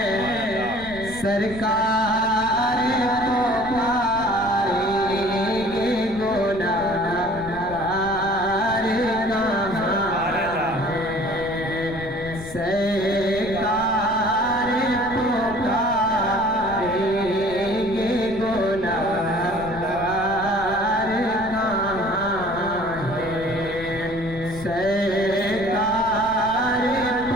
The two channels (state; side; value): noise; left; rumble, 15 dB below the sound